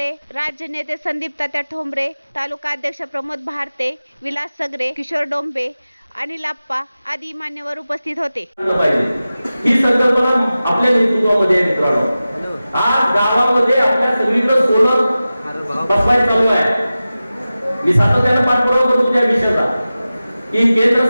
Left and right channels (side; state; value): both; inverted; correlation -0.95